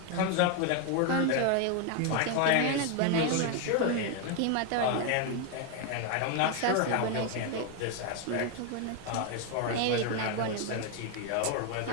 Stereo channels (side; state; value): both; different; correlation 0.01